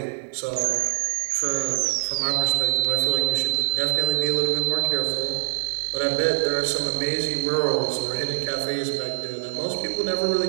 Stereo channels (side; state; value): left; silent; 59 dB below the other